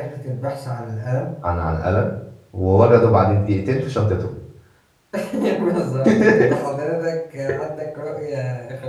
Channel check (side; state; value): both; identical; correlation 1.00